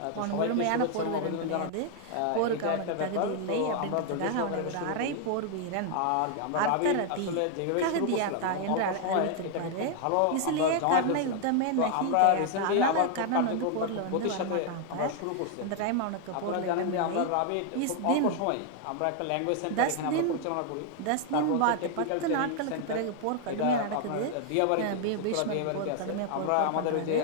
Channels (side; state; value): both; different; correlation 0.00